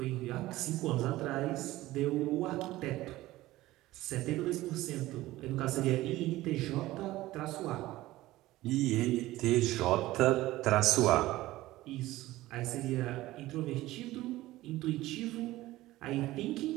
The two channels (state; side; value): quieter; left; 17.0 dB